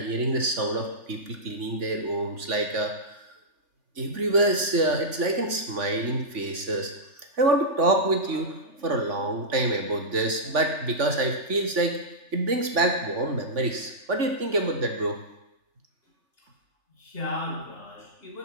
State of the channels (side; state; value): left; late; 3.5 ms